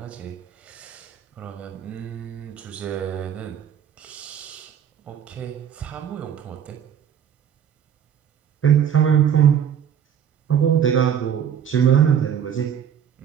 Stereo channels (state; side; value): quieter; left; 8.7 dB